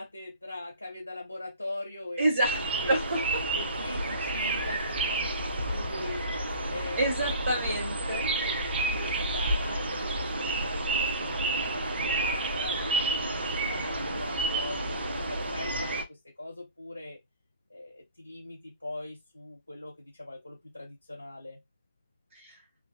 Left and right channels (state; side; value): inverted; both; correlation -0.46